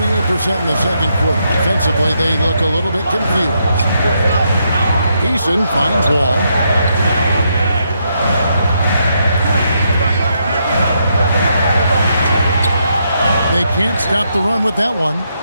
in the second quarter. Defensively, they look a little bit confused. Eason finds Wall. They can't stop the run with that one.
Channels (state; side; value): inverted; both; correlation -0.78